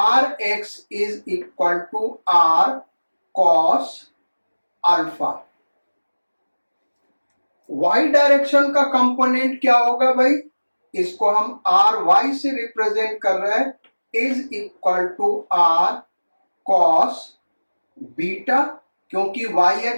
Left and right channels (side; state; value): both; inverted; correlation -1.00